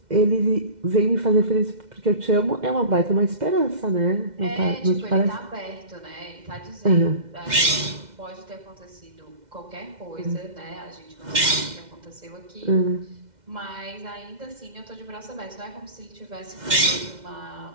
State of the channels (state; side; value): late; left; 2.1 ms